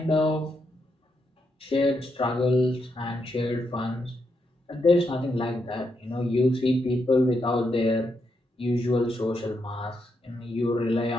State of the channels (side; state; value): both; normal; correlation 0.81